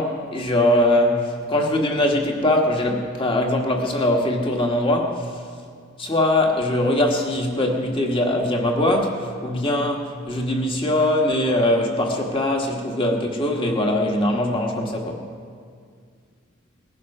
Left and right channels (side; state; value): both; normal; correlation 0.40